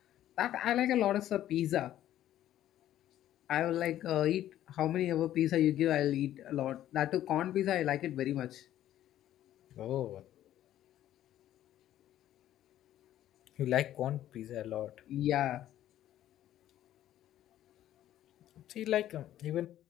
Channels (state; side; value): quieter; right; 12.5 dB